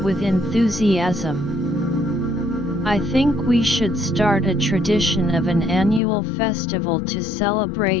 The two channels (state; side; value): drops out; right; at 6.0 s